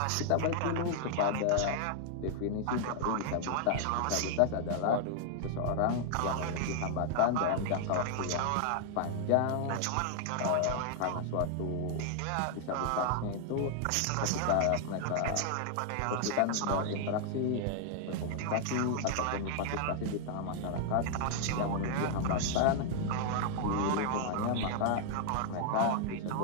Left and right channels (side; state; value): both; different; correlation 0.00